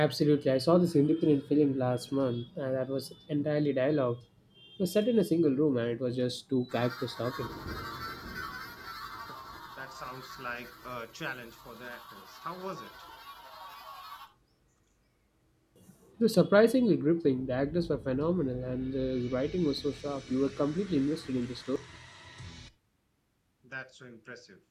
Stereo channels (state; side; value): identical; both; correlation 1.00